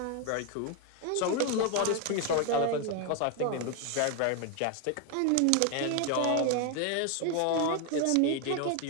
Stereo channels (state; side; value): different; both; correlation 0.01